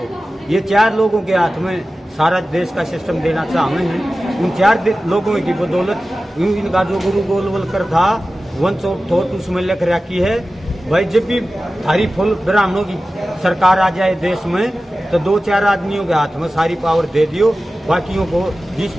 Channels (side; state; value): both; normal; correlation 0.95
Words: ये 4 लोगों के हाथ में सारा देश का सिस्टम देना चाहते हैं। उन 4 लोगों की बदौलत इनका जो गुरु गोलवलकर था वंश ऑफ थॉट उसमें लिख रखी है, भाई जब भी थारी फुल ब्राह्मणों की सरकार आ जाए देश में तो 2-4 आदमियों के हाथ में सारी पावर दे दियो, बाकियों को जिस